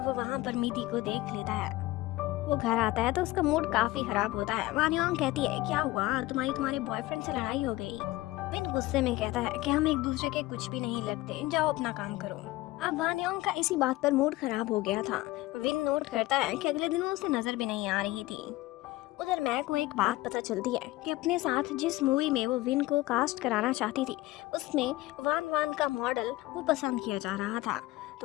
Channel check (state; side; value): quieter; right; 18.6 dB